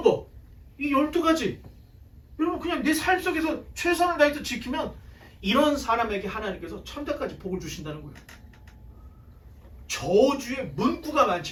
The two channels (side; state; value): both; identical; correlation 1.00